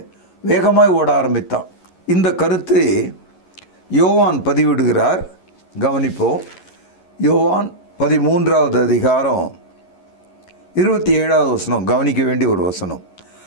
வேகமாய் ஓட ஆரம்பித்தான். இந்த கருத்தை யோவான் பதிவிடுகிறார். கவனிப்போம். யோவான் 13வது அதிகாரம் 27வது வசனம், கவனிக்க வேண்டிய ஒரு வசனம்.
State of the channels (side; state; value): right; late; 11 ms